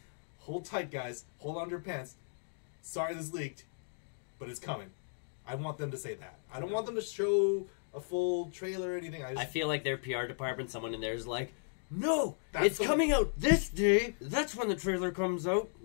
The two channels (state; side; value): silent; right; digital silence